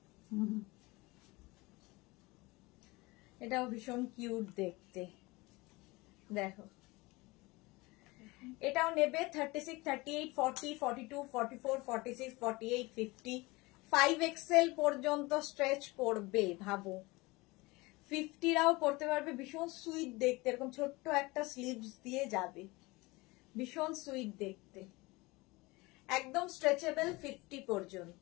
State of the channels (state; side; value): quieter; right; 23.0 dB